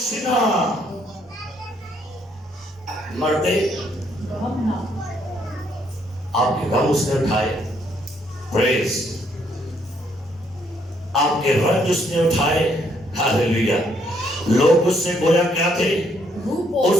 مرد آپ کے غم اس نے اٹھائے، پریز، آپ کے رنج اس نے اٹھائے، ہاللیلویا۔ لوگ اس سے گویا کیا تھے؟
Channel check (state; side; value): normal; both; correlation 0.70